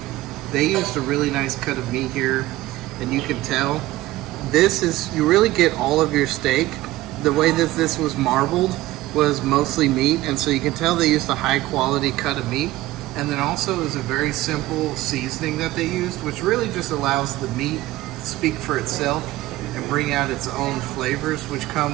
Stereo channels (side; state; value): left; quieter; 17.0 dB